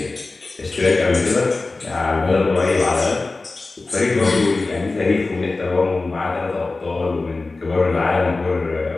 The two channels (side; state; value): right; quieter; 3.5 dB